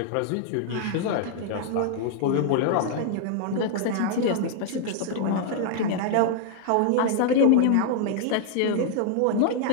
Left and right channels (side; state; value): both; different; correlation -0.01